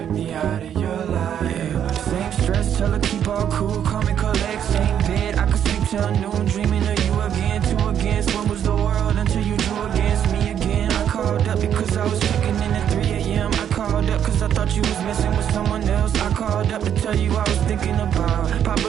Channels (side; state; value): left; quieter; 9.3 dB